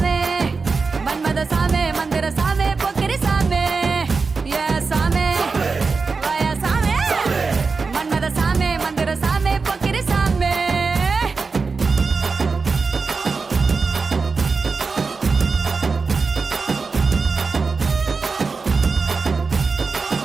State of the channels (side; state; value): left; quieter; 4.5 dB